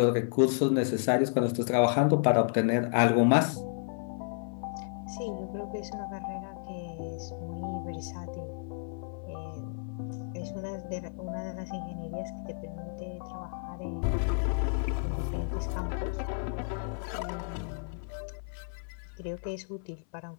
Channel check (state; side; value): silent; right; 57 dB below the other